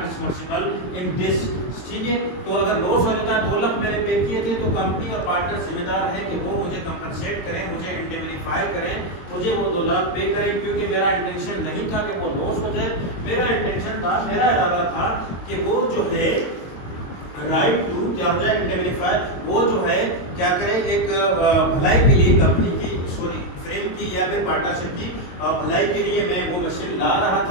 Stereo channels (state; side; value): late; right; 22 ms